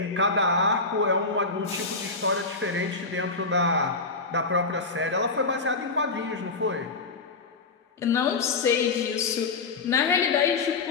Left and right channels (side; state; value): right; quieter; 4.0 dB